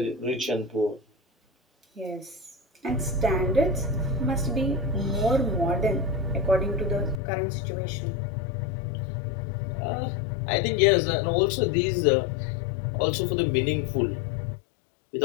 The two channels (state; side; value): drops out; right; at 7.2 s